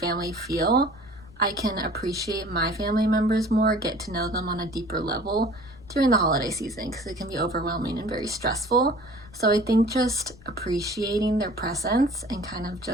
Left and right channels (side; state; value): left; noise; rumble, 22 dB below the sound